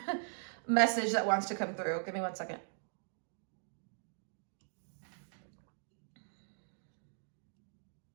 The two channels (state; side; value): silent; left; digital silence